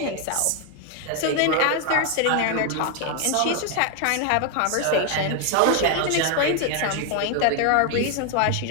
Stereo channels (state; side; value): different; both; correlation 0.01